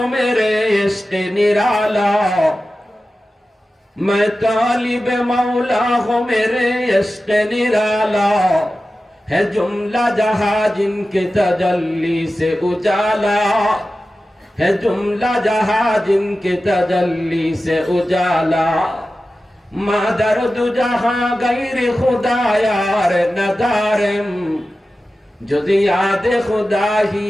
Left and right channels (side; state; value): both; normal; correlation 0.94